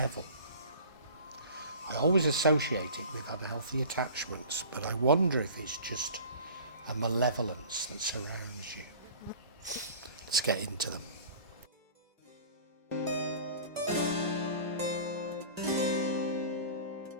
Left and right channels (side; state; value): both; inverted; correlation -0.42